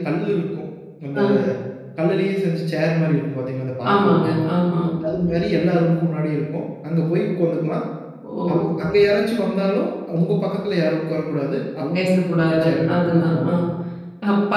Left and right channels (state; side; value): identical; both; correlation 1.00